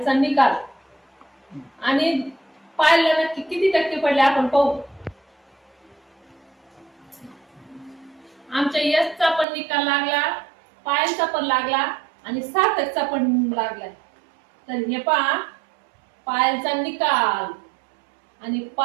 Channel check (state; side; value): drops out; left; at 9.5 s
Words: निकाल आणि पायलला नक्की किती टक्के पडले आपण पाहू. आमच्या यशचा पण निकाल लागला, पायलचा पण लागला आणि सार्थकचा पण लागलाय. तर हे पहा पायलचा निकाल आणि